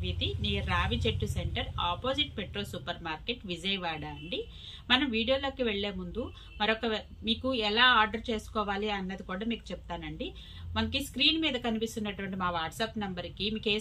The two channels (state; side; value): identical; both; correlation 1.00